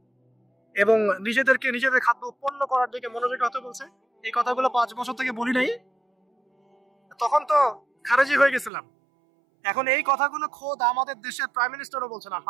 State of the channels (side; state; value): left; drops out; at 8.7 s